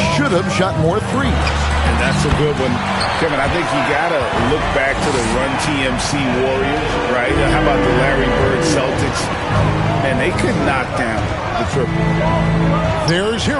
should have shot more threes? And that's a good one. Kevin, I think you got to look back to the Run TMC Warriors, right? How about the Larry Bird Celtics? And they could knock down the triple. There's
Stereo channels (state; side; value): identical; both; correlation 1.00